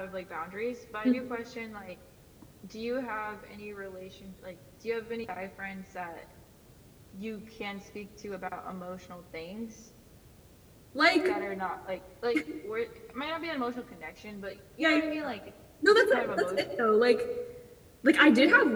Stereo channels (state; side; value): identical; both; correlation 1.00